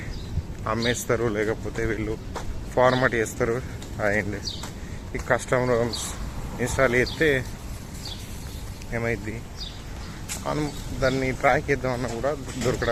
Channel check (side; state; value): both; identical; correlation 1.00